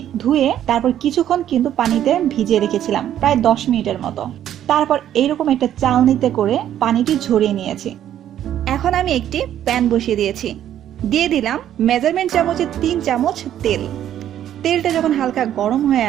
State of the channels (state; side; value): quieter; left; 11.1 dB